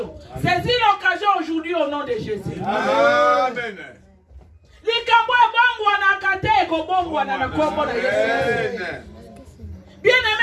Saisi l'occasion aujourd'hui au nom de Jésus. Amen. Bien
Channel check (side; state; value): both; identical; correlation 1.00